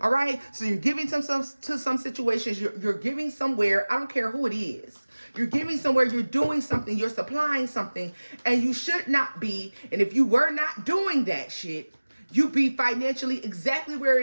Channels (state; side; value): inverted; both; correlation -1.00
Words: All right, so you're giving to some situations. You're giving somewhere. I don't care who it is. You're giving somewhere. You're doing something. You're supplying something, and you should not be. And if you were not doing that shit, you be financially exactly where